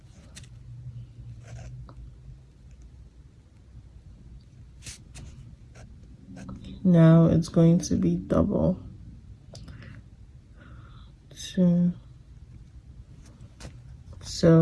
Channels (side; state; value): both; identical; correlation 1.00